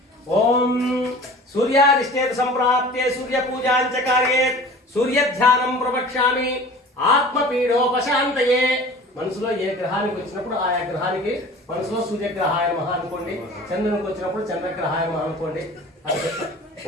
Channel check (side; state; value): both; normal; correlation 0.42